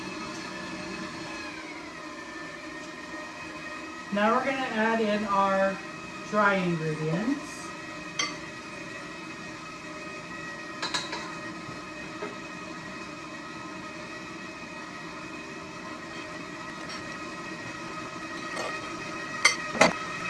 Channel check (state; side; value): identical; both; correlation 1.00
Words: Now we're going to add in our dry ingredients.